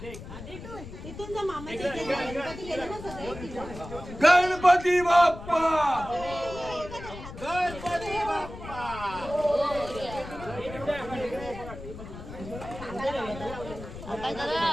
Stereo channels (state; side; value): noise; left; rumble, 12 dB below the sound